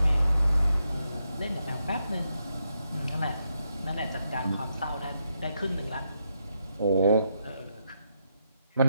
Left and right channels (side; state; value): both; inverted; correlation -0.82